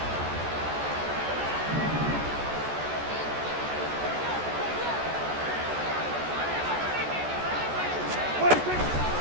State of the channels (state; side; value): late; left; 14 ms